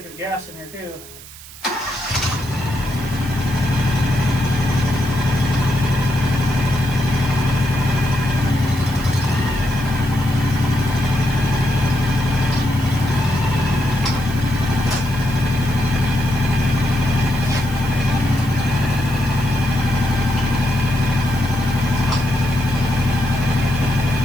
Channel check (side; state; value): right; noise; hiss, 17 dB below the sound